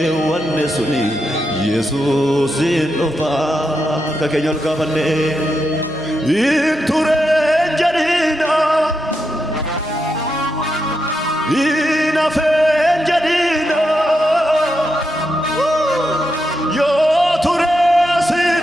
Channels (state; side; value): normal; both; correlation 0.85